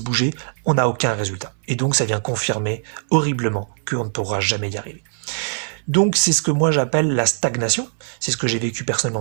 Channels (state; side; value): silent; left; 60 dB below the other